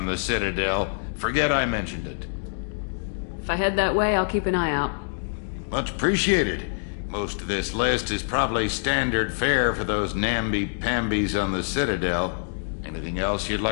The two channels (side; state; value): right; silent; digital silence